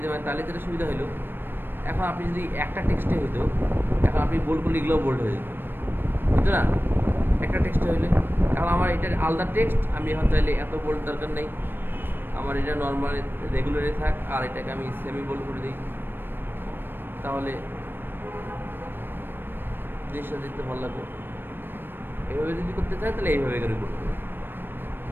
পারেন, তাহলে যেটা সুবিধা হলো। এখন আপনি যদি একটা টেক্সটে হইতো, এখন আপনি বোল্ড করলে এগুলোও বোল্ড হয়ে যেত, বুঝতো না? একটা টেক্সটে হইলে, এখন আমার এটার আলাদা টেক্সট, আমি এখন চাইলে এত বোল্ড দরকার নেই, আমার এটা নর্মাল রেগুলারে থাক, আর এটাকে আমি সেমি বোল্ড করে দিই, তাহলে জিনিসটা দেখতে ভালো লাগবে। এইভাবে যদি করতে চাই তাহলে এইভাবে করে করতে হবে।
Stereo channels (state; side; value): late; left; 0.097 ms